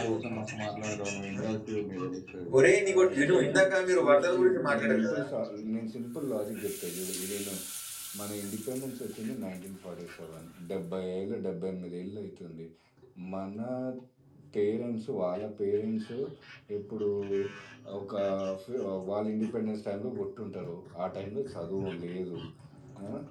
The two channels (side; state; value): both; identical; correlation 1.00